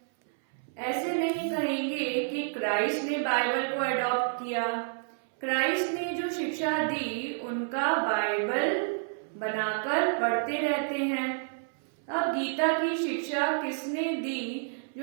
ऐसे नहीं कहेंगे कि क्राइस्ट ने बाइबल को एडॉप्ट किया। क्राइस्ट ने जो शिक्षा दी उनका बाइबल बनाकर पढ़ते रहते हैं। अब गीता की शिक्षा किसने दी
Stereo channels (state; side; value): silent; left; 58 dB below the other